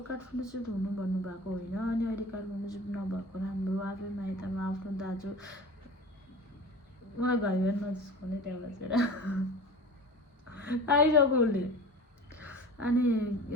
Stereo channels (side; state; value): both; normal; correlation 0.36